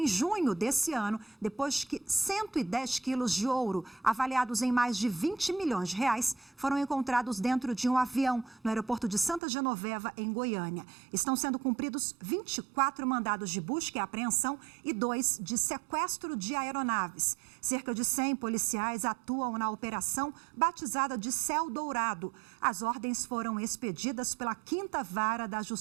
junho desse ano, depois que 110 quilos de ouro, avaliados em mais de 20 milhões de reais, foram encontrados dentro de um avião no aeroporto de Santa Genoveva, em Goiânia. Estão sendo cumpridos 24 mandados de busca e apreensão e 2 de sequestro de aeronaves. Cerca de 100 policiais atuam na operação batizada de Céu Dourado. As ordens foram expedidas pela 5ª Vara da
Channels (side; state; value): left; drops out; at 9.4 s